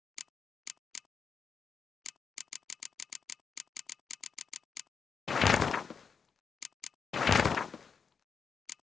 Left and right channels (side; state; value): right; quieter; 6.0 dB